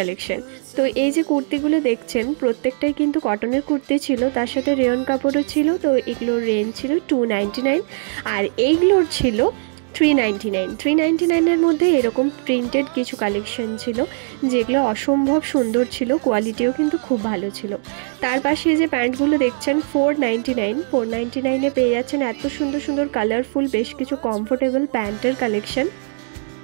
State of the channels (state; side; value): silent; left; digital silence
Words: তো এই যে কুর্তিগুলো দেখছেন প্রত্যেকটাই কিন্তু কটনের কুর্তি ছিল, তার সাথে রেয়ন কাপড়ও ছিল। তো এগুলোর রেঞ্জ ছিল 299 আর এইগুলোর ছিল 399। 399-এর মধ্যে এরকম প্রিন্টেড কিছু কালেকশন ছিল যেগুলো অসম্ভব সুন্দর ছিল, কোয়ালিটিও কিন্তু খুব ভালো ছিল। তার পাশে যে প্যান্টগুলো দেখছেন 499। 499-এ পেয়ে যাচ্ছেন এত সুন্দর সুন্দর কালারফুল বেশ কিছু কমফোর্টেবল প্যান্টের কালেকশন।